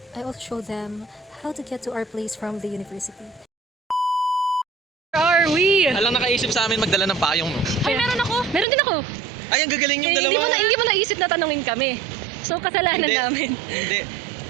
I also showed them how to get to our place from the university. Where are we? Alang nakaisip sa amin magdala ng payong, no? Ay, meron ako. Meron din ako. Ay, ang gagaling yung dalawa. Hindi mo naisip na tanungin kami. So, kasalanan Hindi. namin. Hindi.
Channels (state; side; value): drops out; left; at 8.7 s